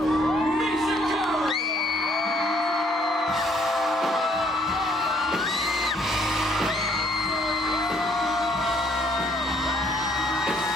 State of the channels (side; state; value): both; normal; correlation 0.65